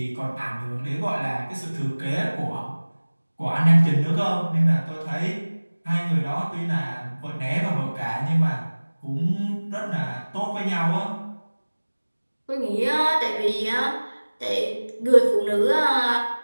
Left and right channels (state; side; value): inverted; both; correlation -1.00